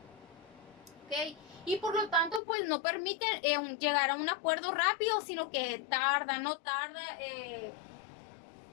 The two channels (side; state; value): right; drops out; at 2.4 s